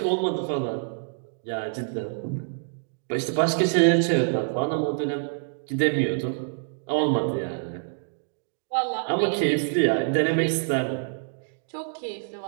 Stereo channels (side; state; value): left; silent; 61 dB below the other